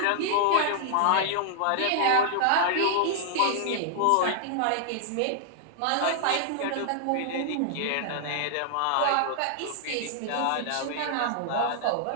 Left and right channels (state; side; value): different; both; correlation -0.01